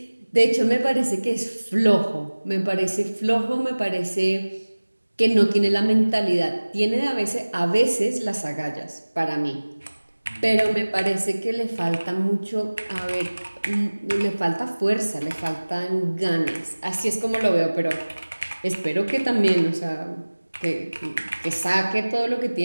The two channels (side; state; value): both; inverted; correlation -1.00